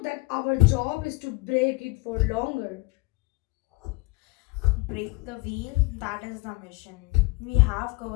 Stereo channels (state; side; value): quieter; right; 24.6 dB